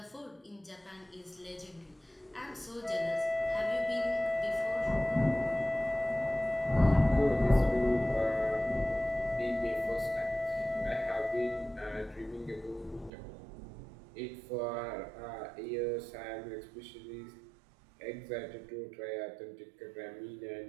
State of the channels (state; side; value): drops out; left; at 13.1 s